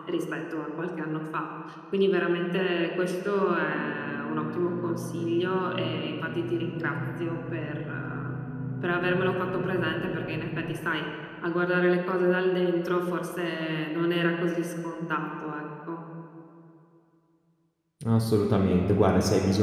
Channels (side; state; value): both; identical; correlation 1.00